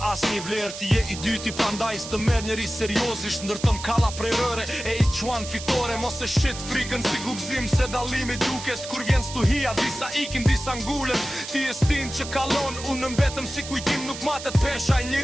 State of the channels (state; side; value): noise; right; hiss, 10 dB below the sound